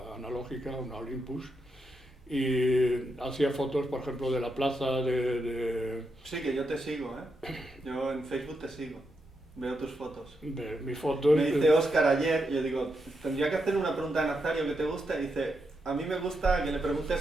analógica, una Olympus, y hacía fotos, por ejemplo, de la plaza, Sí, que yo te sigo, ¿eh? Yo en Facebook te sigo. Veo tus fotos. de mis fotos. Me dice Óscar ayer, yo digo, tendría que hacer una pregunta a Nazario que te gusta, y dice, a mí me gusta que le preguntes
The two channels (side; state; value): both; normal; correlation 0.83